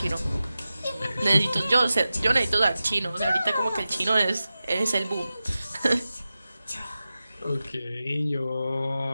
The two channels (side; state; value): both; inverted; correlation -0.94